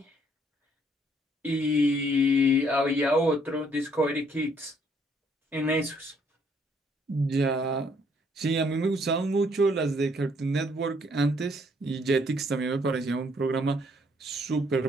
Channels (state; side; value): normal; both; correlation 0.67